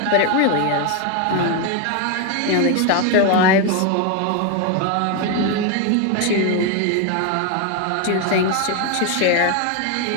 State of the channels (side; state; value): both; different; correlation 0.01